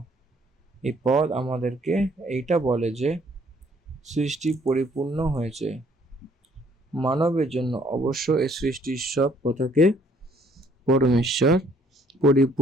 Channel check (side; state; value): both; normal; correlation 0.63